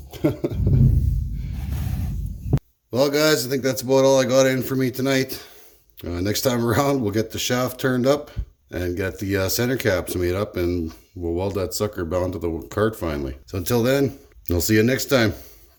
Well guys, I think that's about all I got in for me tonight. Next time around, we'll get the shaft turned up and get the center caps made up, and we'll weld that sucker bound to the cart finally. So until then, I'll see you next time.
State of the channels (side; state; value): both; identical; correlation 1.00